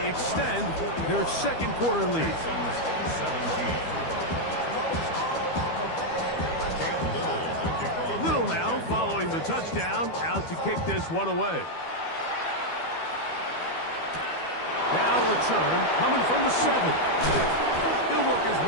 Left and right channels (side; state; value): right; late; 12 ms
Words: extend their second quarter lead. 17. Little now following the touchdown, out to kick this one away. Now return coming from the 7. He'll work his